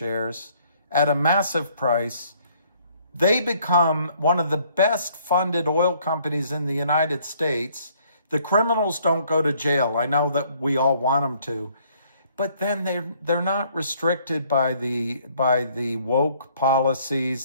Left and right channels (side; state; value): both; inverted; correlation -0.63